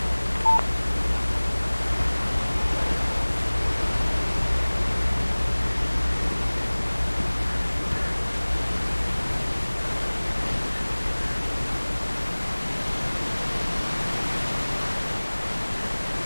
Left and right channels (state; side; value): inverted; both; correlation -1.00